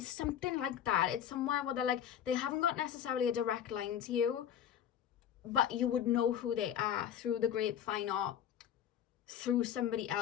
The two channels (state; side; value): quieter; right; 9.7 dB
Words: something like that. It's somewhere where they're like, they haven't got necessarily a direct line to you, but you would know who they are through the grapevine or through somebody